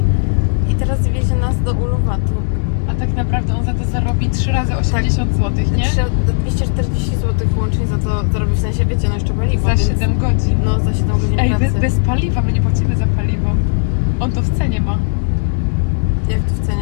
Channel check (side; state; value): right; silent; digital silence